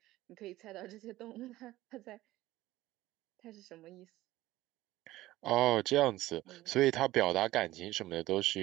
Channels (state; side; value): quieter; left; 16.6 dB